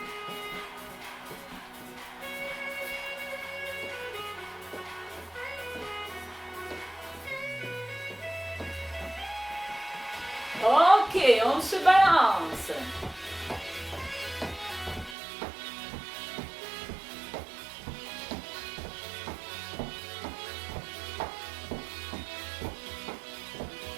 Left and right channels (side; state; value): left; drops out; at 15.2 s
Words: Ok, on se balance.